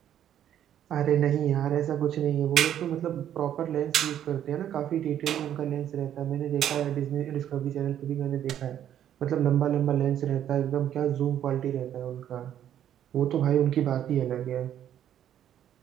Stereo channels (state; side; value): quieter; left; 10.5 dB